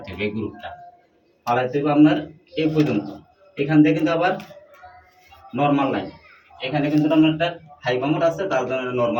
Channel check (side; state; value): both; identical; correlation 1.00